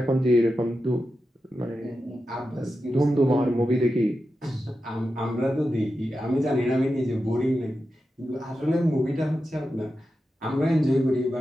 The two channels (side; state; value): both; normal; correlation 0.90